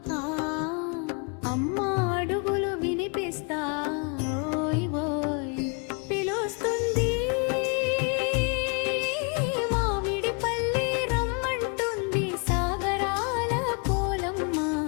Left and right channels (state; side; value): quieter; right; 35.1 dB